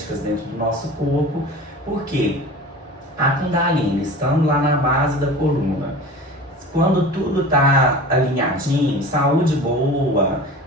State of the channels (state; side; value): normal; both; correlation 0.37